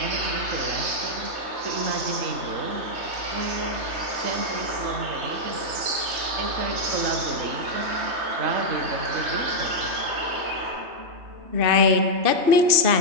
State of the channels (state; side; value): late; left; 3.2 ms